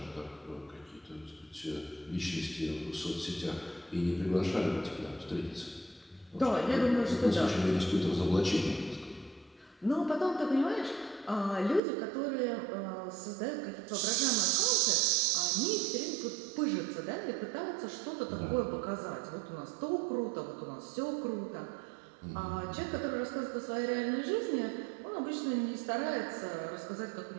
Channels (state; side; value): drops out; left; at 11.8 s